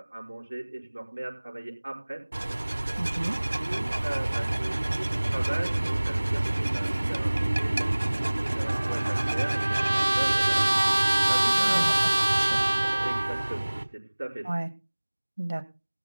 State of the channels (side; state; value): both; inverted; correlation -1.00